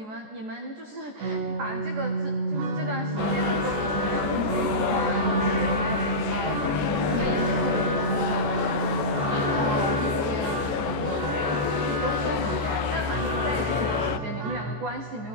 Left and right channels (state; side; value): late; left; 14 ms